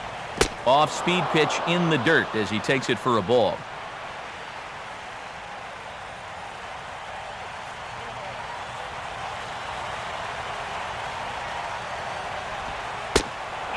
Off-speed pitch in the dirt as he takes it for a ball.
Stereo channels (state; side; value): identical; both; correlation 1.00